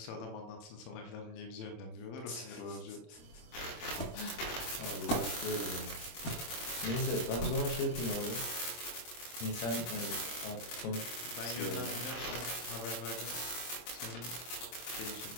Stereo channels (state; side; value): late; right; 25 ms